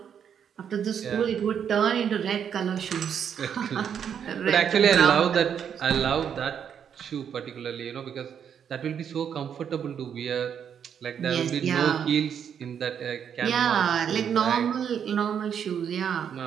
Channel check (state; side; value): quieter; left; 8.1 dB